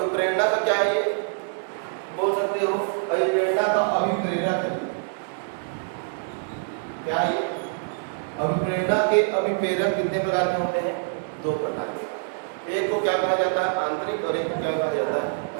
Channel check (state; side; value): silent; left; digital silence